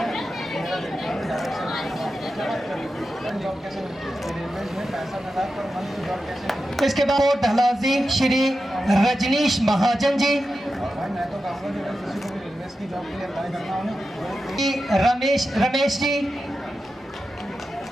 इसके बाद ढलाजी श्री रजनीश महाजन जी, रमेश जी,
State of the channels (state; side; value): normal; both; correlation 0.90